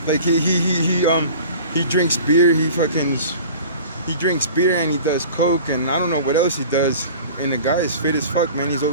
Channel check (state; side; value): inverted; both; correlation -0.42